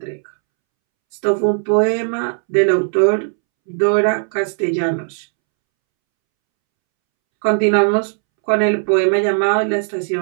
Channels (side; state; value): left; silent; 68 dB below the other